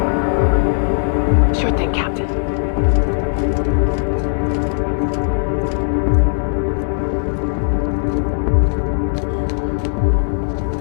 Sure thing, Captain.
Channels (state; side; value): silent; right; digital silence